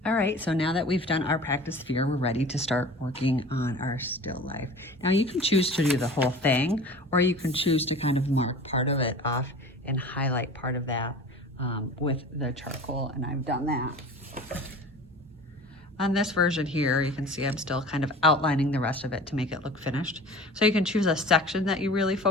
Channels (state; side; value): normal; both; correlation 0.40